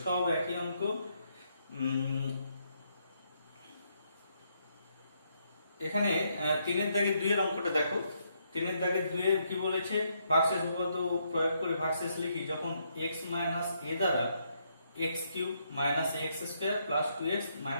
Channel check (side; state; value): both; inverted; correlation -0.75